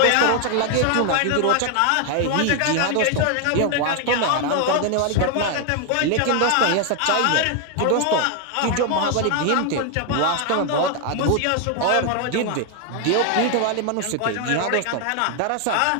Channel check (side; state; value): both; different; correlation 0.00